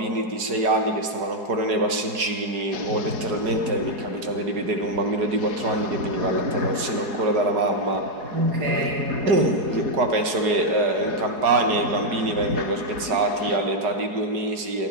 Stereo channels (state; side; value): late; left; 4.8 ms